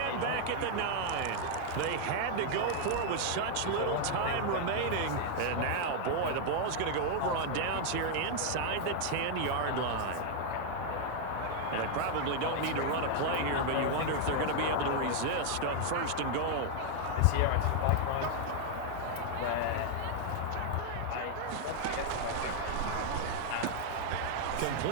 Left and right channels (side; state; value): both; different; correlation 0.00